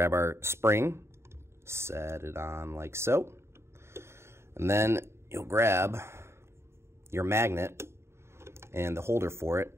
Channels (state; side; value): late; left; 0.13 ms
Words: our spring, set it on like so. And then you'll grab your magnet and the holder for it,